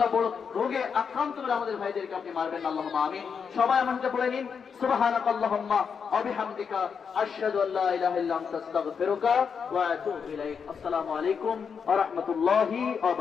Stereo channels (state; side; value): quieter; right; 6.4 dB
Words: বড় রোগে আক্রান্ত করে আমাদের ভাইদেরকে আপনি মারবেন, আল্লাহুম্মা আমিন। সবাই আমাকে বলে নিন, সুবহানাকাল্লাহুম্মা ওয়া বিহামদিকা আশহাদু আল্লা ইলাহা ইল্লা আনতা আস্তাগফিরুকা ওয়া আতুবু ইলাইক। আসসালামু আলাইকুম ওয়া রাহমাতুল্লাহি ওয়া